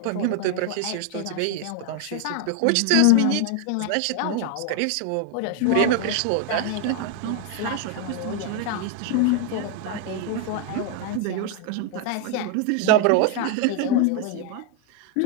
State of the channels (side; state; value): both; different; correlation 0.00